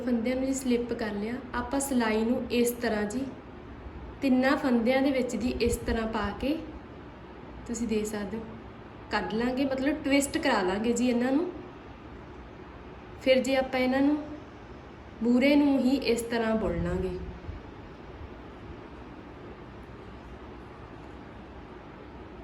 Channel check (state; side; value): identical; both; correlation 1.00